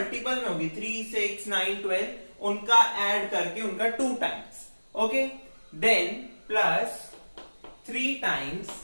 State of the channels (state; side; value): inverted; both; correlation -1.00